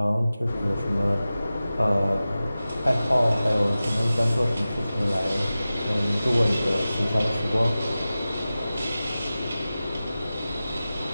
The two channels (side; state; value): both; inverted; correlation -0.95